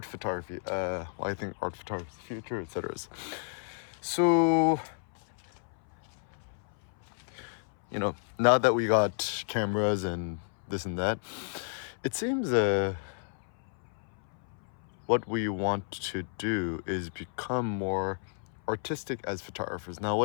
photography. I think art photography is the future, etc. So now that we got cameras and this and that, it seems what we want to do is become more artistic as photographers. Now,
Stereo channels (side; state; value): right; silent; 57 dB below the other